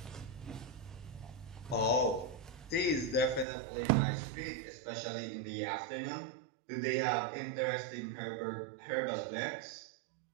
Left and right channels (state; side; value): drops out; left; at 3.5 s